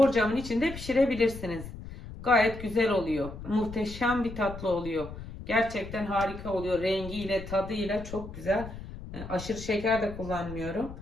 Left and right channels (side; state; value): left; noise; rumble, 12 dB below the sound